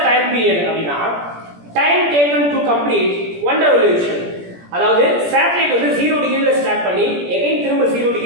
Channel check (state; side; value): late; left; 17 ms